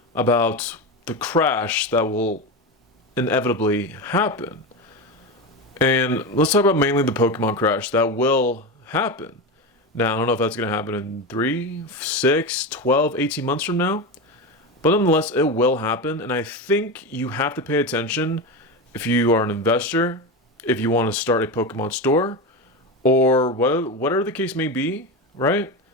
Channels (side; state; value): both; normal; correlation 0.19